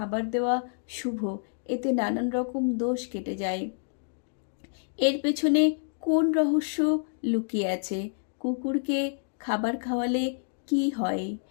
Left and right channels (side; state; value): right; silent; digital silence